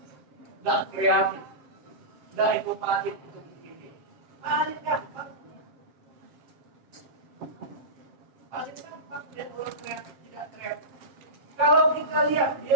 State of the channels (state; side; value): late; left; 7.8 ms